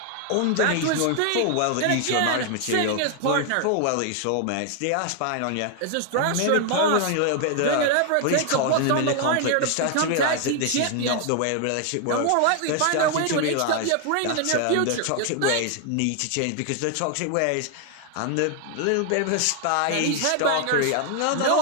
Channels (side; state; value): both; different; correlation 0.00